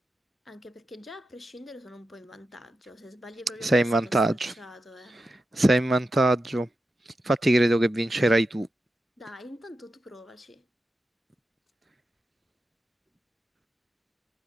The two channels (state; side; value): normal; both; correlation 0.90